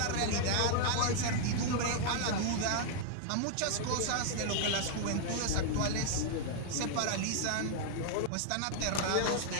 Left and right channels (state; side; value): different; both; correlation -0.01